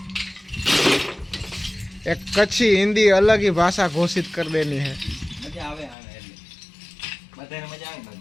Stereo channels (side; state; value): right; drops out; at 6.0 s